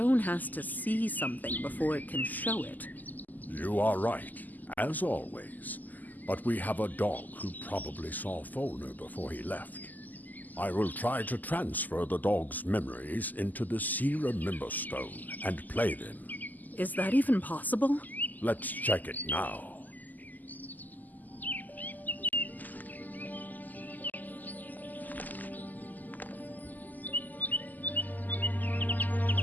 has to see something before it can show it. You are right, as always. But we have a dog who probably saw Fulner before he left. I will try to transfer the dog's memories into the See Remember Stone and play them. Is that even possible? Let's check it now.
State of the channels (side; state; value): right; late; 0.083 ms